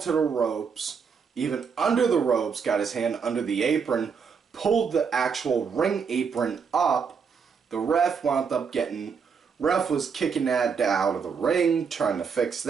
to the ropes, even under the ropes, got his hand under the apron, pulled the actual ring apron up. The ref was kicking that out of the ring, trying to fix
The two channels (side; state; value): left; quieter; 6.1 dB